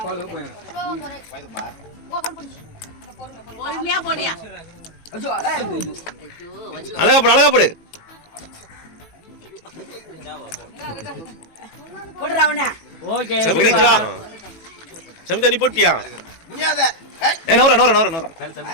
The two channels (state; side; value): late; right; 18 ms